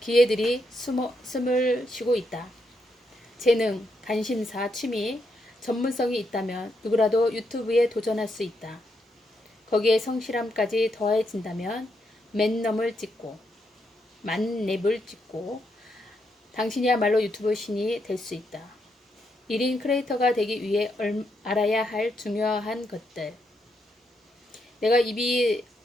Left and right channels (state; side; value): normal; both; correlation 0.80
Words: 기회들이 숨을 쉬고 있다. 재능, 관심사, 취미, 전문성이 있다면 누구라도 유튜브에 도전할 수 있다. 거기에 성실함까지 더해진다면 만렙을 찍고 당신이야말로 유튜브 신이 될 수 있다. 1인 크리에이터가 되기 위해 알아야 할 중요한 것들. 내가 입이